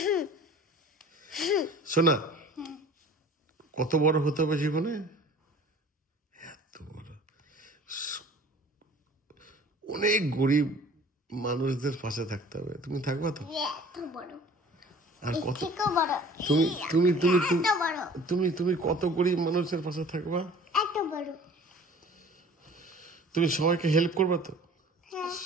শোনা, কত বড় হতে হবে জীবনে? এত বড়, অনেক গরিব মানুষদের পাশে থাকতে হবে। তুমি থাকবা তো? এত বড়। আর কত বড়। তুমি তুমি তুমি এত বড়। তুমি তুমি কত গরিব মানুষের পাশে থাকবা? এত বড়। তুমি সবাইকে হেল্প করবা তো? হ্যাঁ।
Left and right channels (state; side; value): normal; both; correlation 0.47